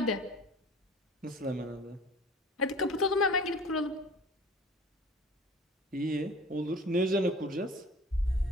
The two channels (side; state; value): both; normal; correlation 0.44